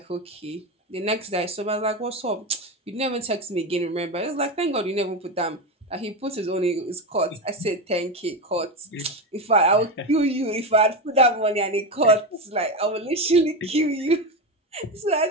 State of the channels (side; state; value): both; normal; correlation 0.16